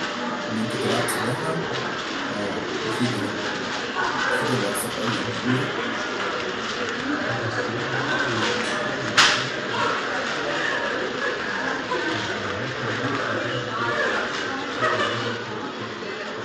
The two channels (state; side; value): identical; both; correlation 1.00